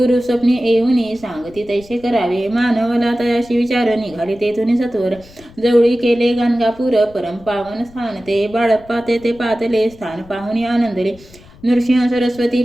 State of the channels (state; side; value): noise; left; rumble, 23 dB below the sound